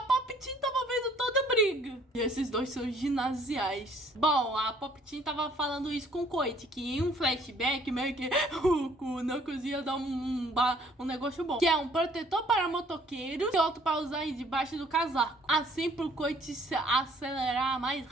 tava vendo toda a briga. E esses dois são ginasiais. Bom, a Pop-Team tava falando isso com o Coit, que em um flashback meio que o Knuckles ia dar um negócio bom. Que é um protetor para motoqueiros e outro para usar debaixo do casaco. assim pro Coit se acelerar mais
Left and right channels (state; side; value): normal; both; correlation 0.60